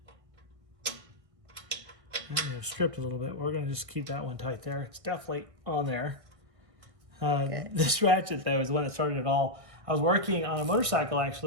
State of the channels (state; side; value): late; left; 1.6 ms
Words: That may have stripped a little bit. We're going to just keep that one tight there. It's definitely on there. This ratchet, though, is the one that started it all. I was working on a motorcycle,